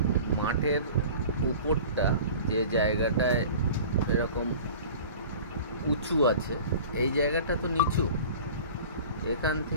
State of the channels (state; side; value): inverted; both; correlation -0.41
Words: মাঠের উপরটা যে জায়গাটায় এরকম উঁচু আছে, এই জায়গাটা তো নিচু, এখান